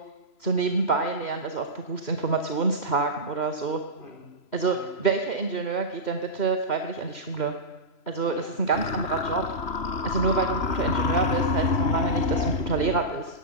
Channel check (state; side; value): late; right; 3.0 ms